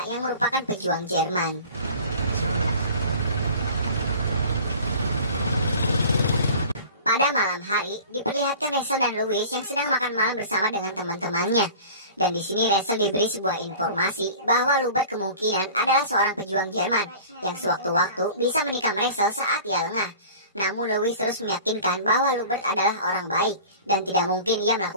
yang merupakan pejuang Jerman. Pada malam hari, diperlihatkan Rachel dan Louis yang sedang makan malam bersama dengan teman-temannya. Dan di sini Rachel diberi sebuah informasi bahwa Lubert kemungkinan adalah seorang pejuang Jerman yang sewaktu-waktu bisa menikam Rachel saat ia lengah. Namun Louis terus meyakinkan bahwa Lubert adalah orang baik dan tidak mungkin ia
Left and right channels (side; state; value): both; inverted; correlation -0.42